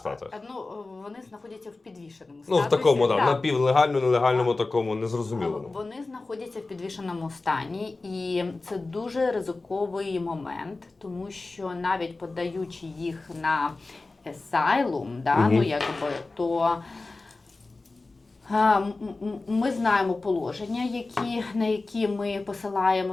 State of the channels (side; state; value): right; quieter; 3.4 dB